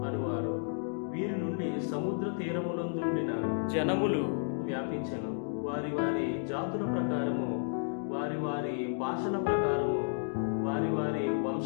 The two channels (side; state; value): right; silent; digital silence